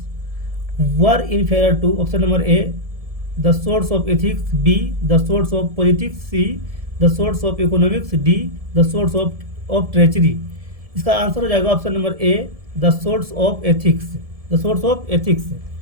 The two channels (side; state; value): left; late; 1.7 ms